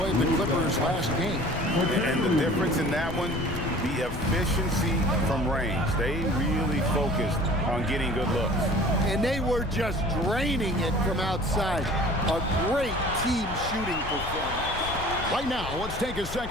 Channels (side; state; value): left; noise; rumble, 9 dB below the sound